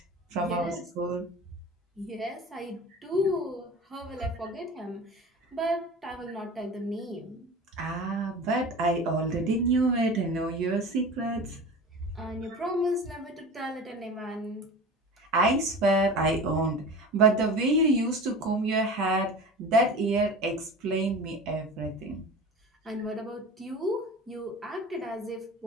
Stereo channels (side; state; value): both; normal; correlation 0.35